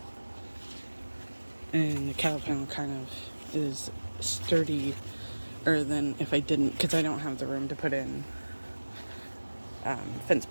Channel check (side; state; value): both; inverted; correlation -1.00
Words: and the cattle panel kind of is sturdier than if I didn't, because I don't have the room to put in fence